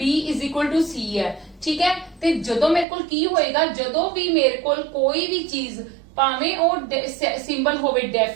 is equal to C है, ठीक है। ते जदों मेरे कोल की होएगा, जदों भी मेरे कोल कोई भी चीज भावें ਉਹ ਸਿੰਬਲ ਹੋਵੇ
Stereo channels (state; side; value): drops out; left; at 2.9 s